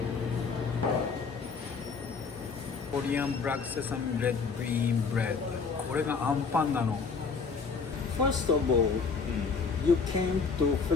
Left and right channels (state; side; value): quieter; right; 5.1 dB